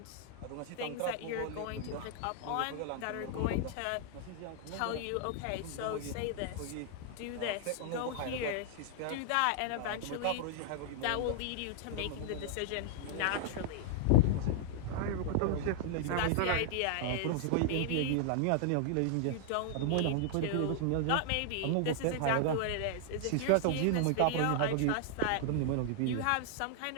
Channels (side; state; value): both; different; correlation 0.00